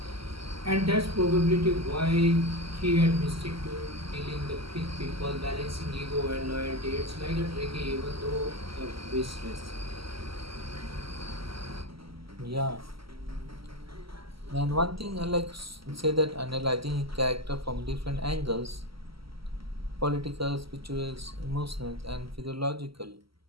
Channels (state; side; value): late; left; 0.75 ms